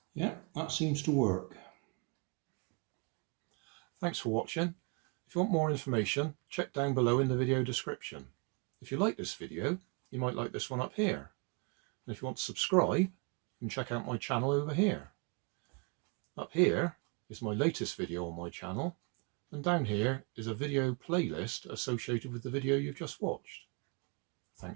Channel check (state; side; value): quieter; left; 33.4 dB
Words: Yeah, that seems to work. Thanks for watching. If you want more information, check down below in the video description. If you like this video, you might like this one up here. And if you want to subscribe, you can check out my channel over here. Up here is my latest video on my channel, and down here is a video playlist associated with the video you've just watched.